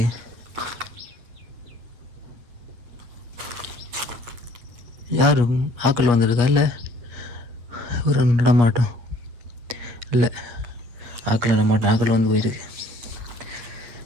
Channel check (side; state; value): left; late; 8.4 ms